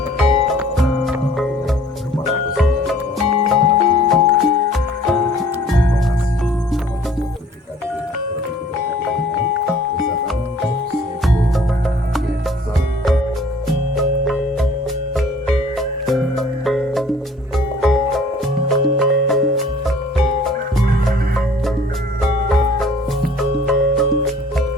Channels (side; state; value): both; normal; correlation 0.53